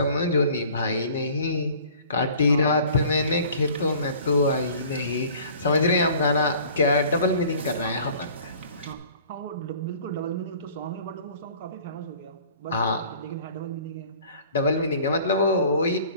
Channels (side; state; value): both; inverted; correlation -0.50